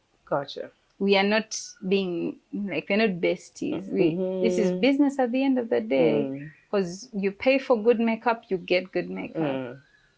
Gotcha. We are not being like, we're not besties. This is business at the end of the day, because you pay for good makeup, you get good makeup.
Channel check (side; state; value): both; identical; correlation 1.00